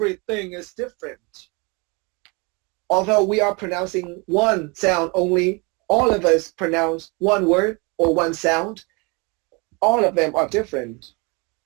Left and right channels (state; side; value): quieter; left; 29.2 dB